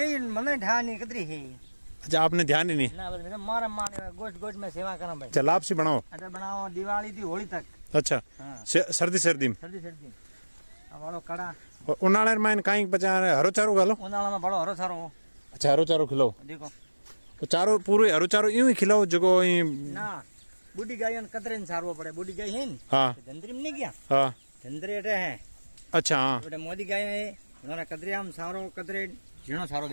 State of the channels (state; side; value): inverted; both; correlation -1.00